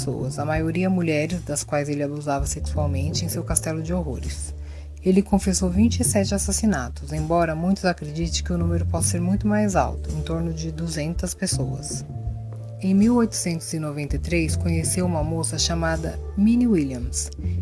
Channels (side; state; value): both; identical; correlation 1.00